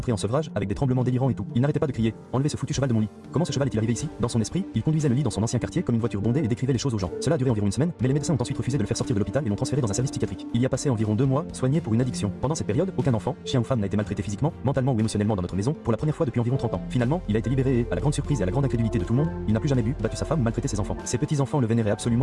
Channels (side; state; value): both; identical; correlation 1.00